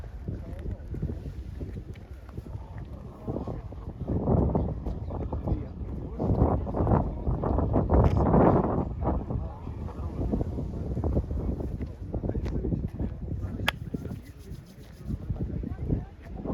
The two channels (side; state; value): both; identical; correlation 1.00